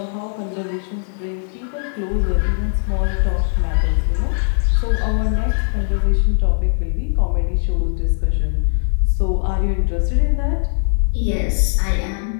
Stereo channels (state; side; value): silent; right; digital silence